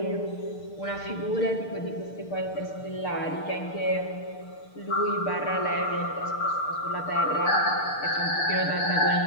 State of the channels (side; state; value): right; late; 6.6 ms